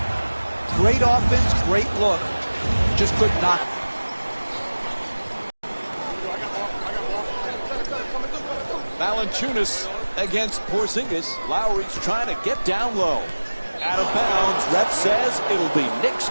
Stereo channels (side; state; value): both; inverted; correlation -1.00